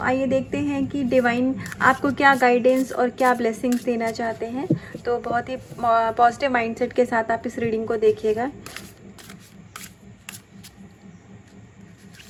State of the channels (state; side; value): identical; both; correlation 1.00